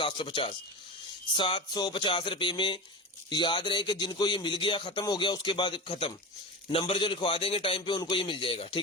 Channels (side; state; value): both; normal; correlation 0.26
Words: 750 रुपए में। याद रहे कि जिनको ये मिल गया, खत्म हो गया, उसके बाद खत्म। नंबर जो लिखवा देंगे टाइम पे उनको ये मिल जाएगा,